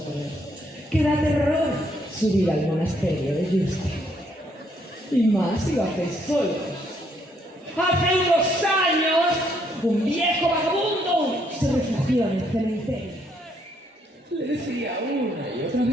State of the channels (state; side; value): normal; both; correlation 0.71